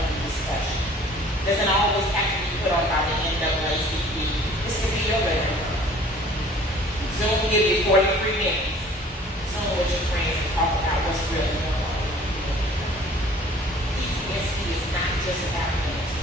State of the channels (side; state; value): both; normal; correlation 0.51